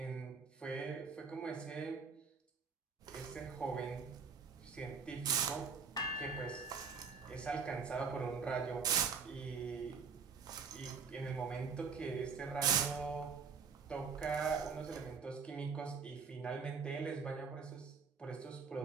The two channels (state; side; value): quieter; left; 5.6 dB